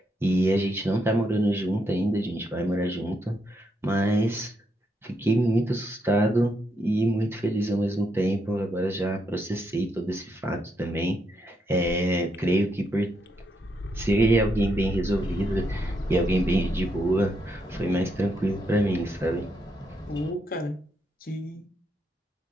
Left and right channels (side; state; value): both; normal; correlation 0.79